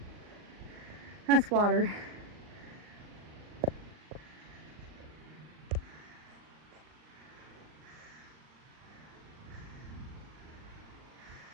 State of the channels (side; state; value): left; late; 39 ms